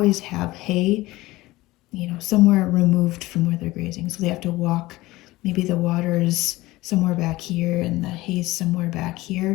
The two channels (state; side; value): quieter; right; 18.9 dB